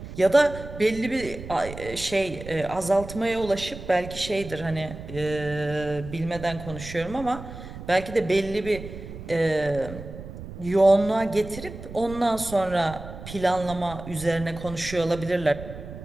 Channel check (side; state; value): right; noise; rumble, 12 dB below the sound